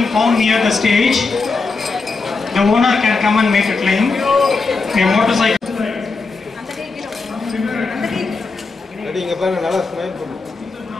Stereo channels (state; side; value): quieter; right; 4.1 dB